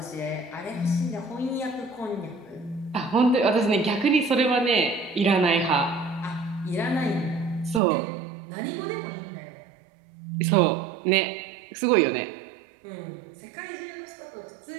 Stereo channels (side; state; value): left; drops out; at 7.8 s